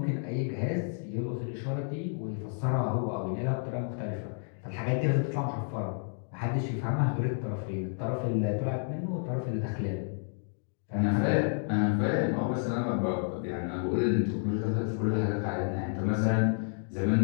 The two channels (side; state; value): right; silent; 57 dB below the other